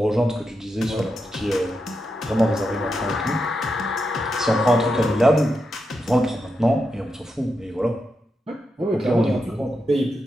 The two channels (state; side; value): normal; both; correlation 0.86